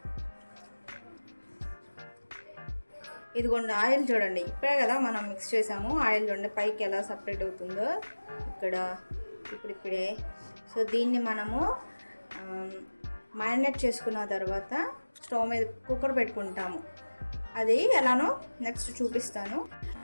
ఇదిగోండి, ఆయిల్ చూడండి, ఇప్పుడే కదా మనం మిక్స్ చేసాము. ఆయిల్ చూడండి పైకి ఎలా సపరేట్ అవుతుందో ఇక్కడ ఇప్పుడిప్పుడే. సో దీన్ని మనము మ్యారినేట్ చేసుకున్న తర్వాత స్టవ్ మీద కుక్కర్ పెట్టుకుంటాము. అది ఎలానో నెక్స్ట్ చూపిస్తాను.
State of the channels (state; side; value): inverted; both; correlation -1.00